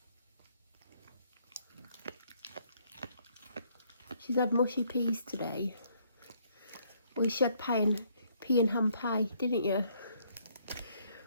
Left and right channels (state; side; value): inverted; both; correlation -0.67